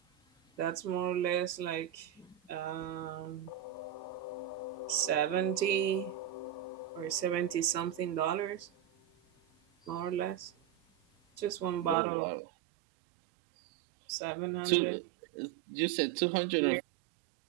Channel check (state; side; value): drops out; left; at 12.0 s